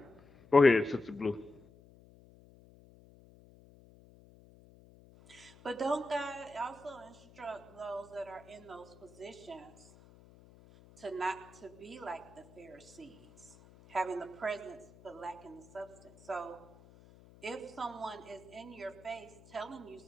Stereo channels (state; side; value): noise; left; hum, 23 dB below the sound